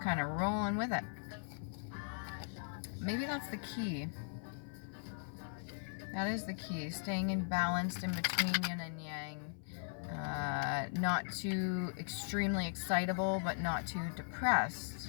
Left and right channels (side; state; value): right; silent; 52 dB below the other